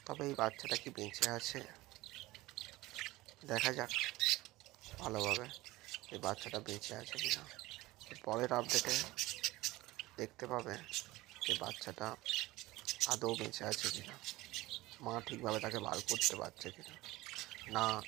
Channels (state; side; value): quieter; left; 19.1 dB